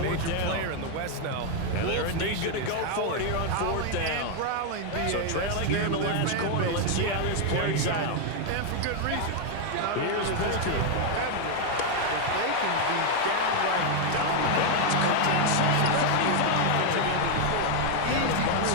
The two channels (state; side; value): different; both; correlation 0.01